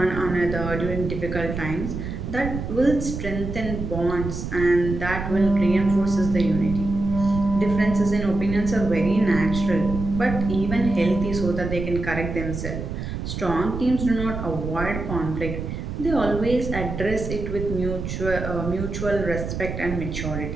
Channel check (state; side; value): noise; right; rumble, 5 dB below the sound